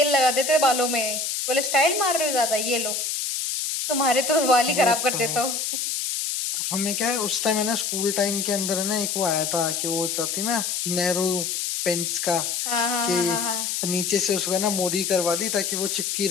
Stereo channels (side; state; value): left; noise; hiss, 1 dB below the sound